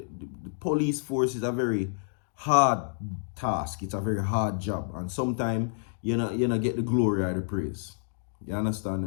police force is a very hard task. It's a very hard job, and sometimes you know get the glory or the praise. You understand?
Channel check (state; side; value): silent; right; digital silence